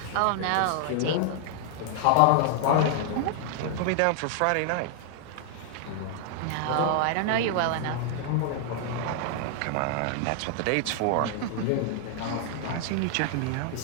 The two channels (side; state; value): both; different; correlation 0.00